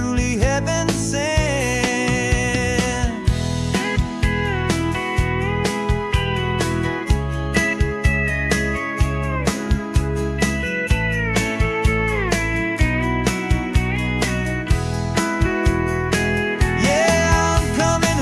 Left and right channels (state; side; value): identical; both; correlation 1.00